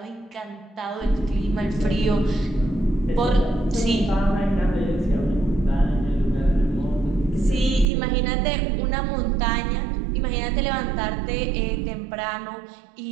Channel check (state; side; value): drops out; left; at 7.9 s